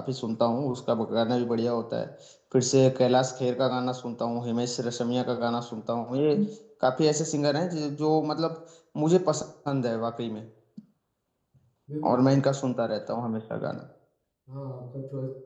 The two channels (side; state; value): both; identical; correlation 1.00